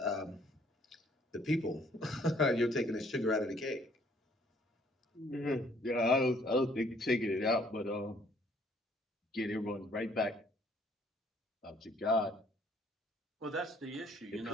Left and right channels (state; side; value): normal; both; correlation 0.62